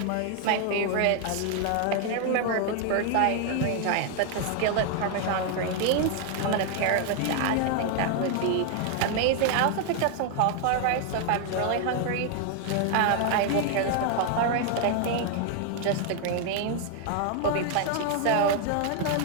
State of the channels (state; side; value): different; both; correlation 0.00